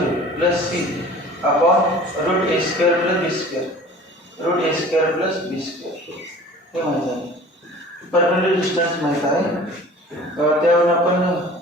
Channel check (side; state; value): both; normal; correlation 0.45